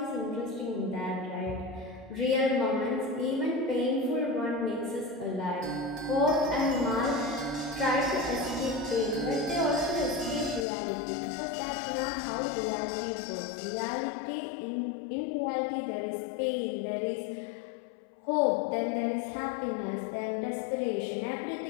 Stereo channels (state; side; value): drops out; right; at 10.7 s